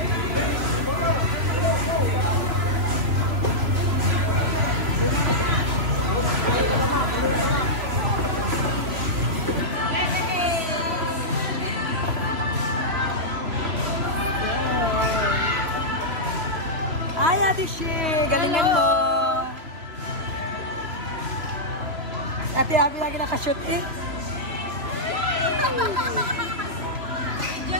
Hi, Ate Shi. Galingan mo. Ate Abby lagi nakashoot eh.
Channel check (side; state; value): left; late; 3.0 ms